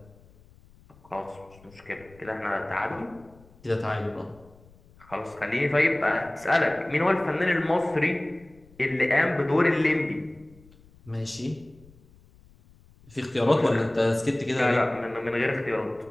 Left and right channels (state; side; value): noise; left; rumble, 27 dB below the sound